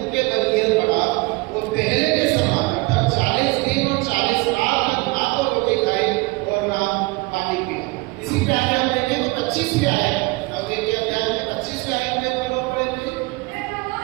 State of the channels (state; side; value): quieter; left; 24.5 dB